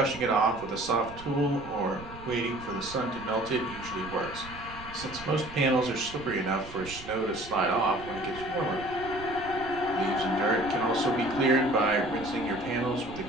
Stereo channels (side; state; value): right; noise; rumble, 16 dB below the sound